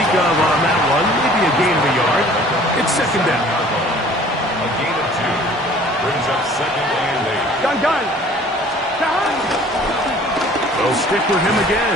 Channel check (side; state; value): both; normal; correlation 0.51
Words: of on that one. Maybe a gain of a yard. It's second down. A gain of 2. Brings up second and 8. Gun. They'll stick with him